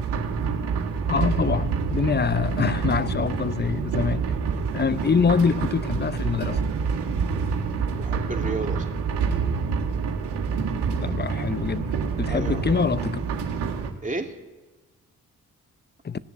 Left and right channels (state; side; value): normal; both; correlation 0.50